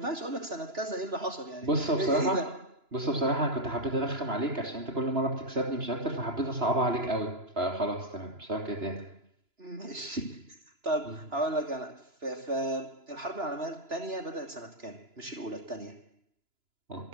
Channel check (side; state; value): left; late; 2.9 ms